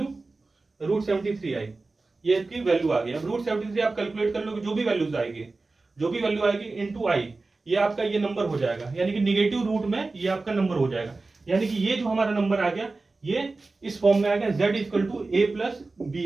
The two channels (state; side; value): quieter; left; 3.5 dB